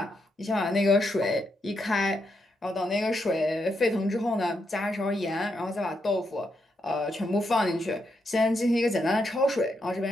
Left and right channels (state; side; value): normal; both; correlation 0.81